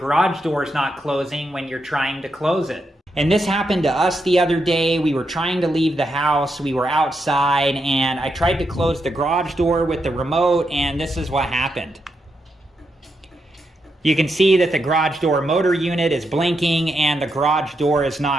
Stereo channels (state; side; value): normal; both; correlation 0.83